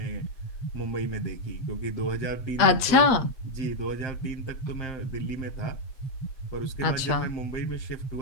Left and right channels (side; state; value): right; late; 7.9 ms